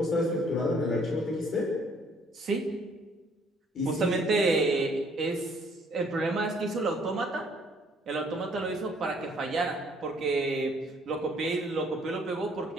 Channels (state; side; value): normal; both; correlation 0.62